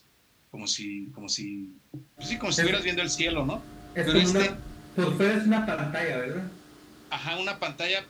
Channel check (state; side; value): identical; both; correlation 1.00